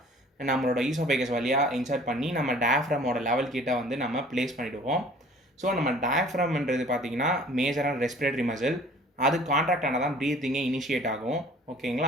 நம்மளோட ஈசோஃபேகஸ் வழியாக இன்சர்ட் பண்ணி நம்ம டயஃப்ரமோட லெவல் கிட்ட வந்து நம்ம ப்ளேஸ் பண்ணிவிடுவோம். ஸோ நம்ம டயஃப்ரம்ன்றது பார்த்தீங்கன்னா மேஜரான ரெஸ்பிரேட்டரி மசில். அது கான்ட்ராக்ட் ஆனால் தான் ப்ரீத்திங்கே இனிஷியேட் ஆகும்,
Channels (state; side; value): normal; both; correlation 0.50